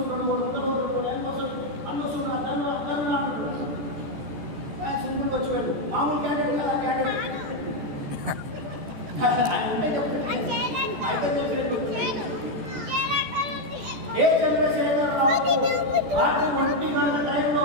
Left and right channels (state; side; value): late; left; 14 ms